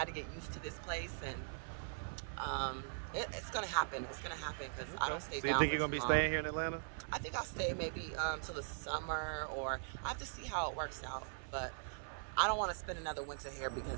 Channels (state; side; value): silent; left; 50 dB below the other